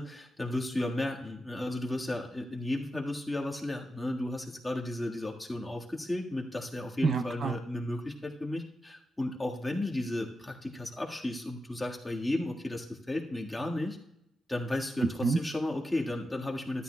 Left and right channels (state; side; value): normal; both; correlation 0.89